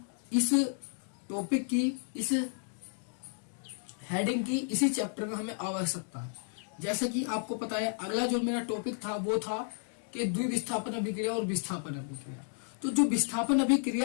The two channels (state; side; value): silent; right; 56 dB below the other